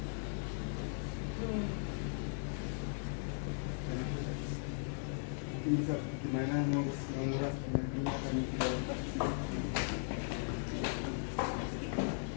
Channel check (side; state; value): right; silent; digital silence